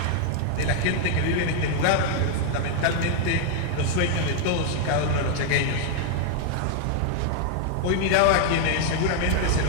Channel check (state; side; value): different; both; correlation 0.00